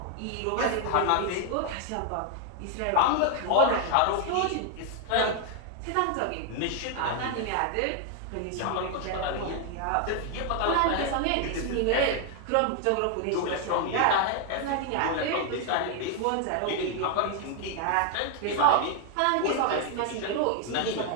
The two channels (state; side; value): different; both; correlation 0.00